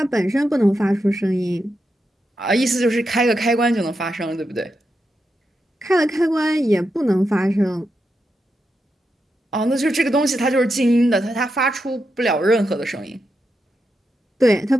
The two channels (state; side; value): normal; both; correlation 0.86